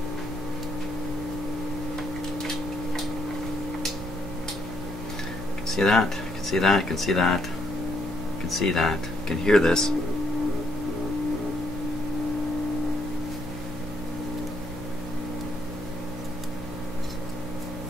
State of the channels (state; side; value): normal; both; correlation 0.72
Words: See that? You can see that, you can see that, you can see that, you can hear this.